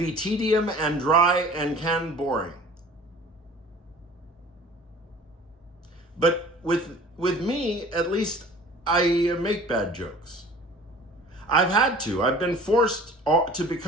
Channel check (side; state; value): both; normal; correlation 0.46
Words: tedium and dry and can boring. But with me, at least I make bad jokes. I've had to. I've been forced to